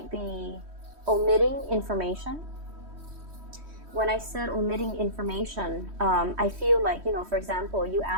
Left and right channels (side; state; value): left; late; 3.1 ms